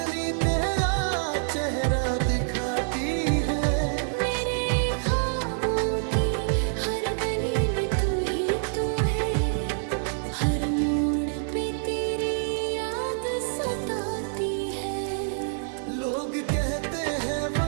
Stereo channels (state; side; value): silent; left; 60 dB below the other